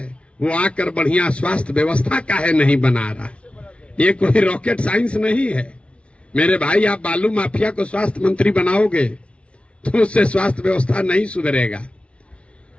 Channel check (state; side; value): late; right; 0.060 ms